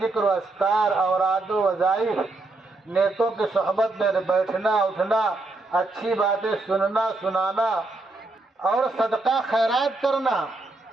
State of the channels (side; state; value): left; quieter; 3.1 dB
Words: و اذکار، اوراد و وظائف، نیکوں کی صحبت میں بیٹھنا اٹھنا، اچھی باتیں سننا سنانا، اور صدقہ خیرات کرنا،